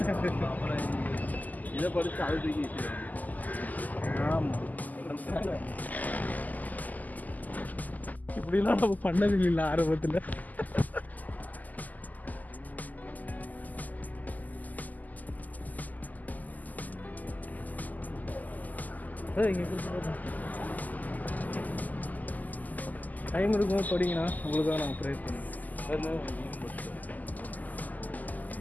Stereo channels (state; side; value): late; right; 0.081 ms